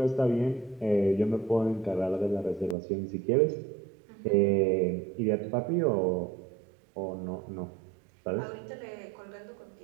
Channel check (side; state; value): left; drops out; at 2.8 s